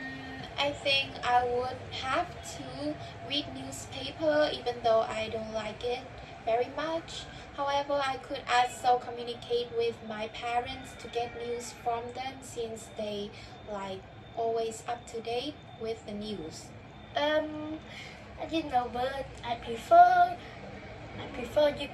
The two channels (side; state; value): both; identical; correlation 1.00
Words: I think I would have to read newspaper even though I don't like it very much. However, I could also communicate with my parents to get news from them since they like always up to date with the news. I didn't know, but I prefer you